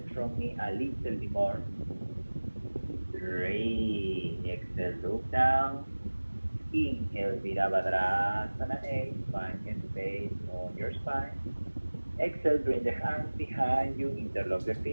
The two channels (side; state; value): both; inverted; correlation -1.00